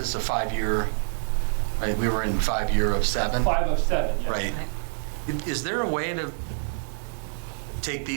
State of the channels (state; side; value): silent; left; 61 dB below the other